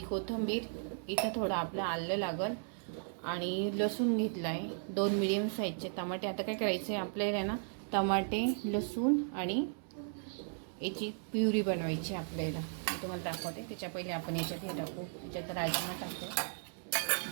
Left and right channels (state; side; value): silent; left; digital silence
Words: कोथिंबीर, इथं थोडं आपलं आलं लागल आणि लसूण घेतला आहे, 2 मीडियम साईजचे टमाटे। आता काय करायचं आहे आपल्याला ना, टमाटे, लसूण आणि याची प्युरी बनवायची आपल्याला। मी तुम्हाला दाखवते। त्याच्या पहिले आपण याच्यात हे टाकू, याच्यात राजमा टाकू,